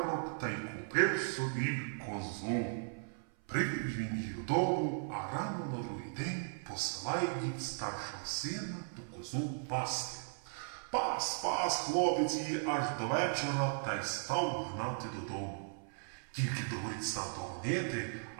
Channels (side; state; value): left; silent; 53 dB below the other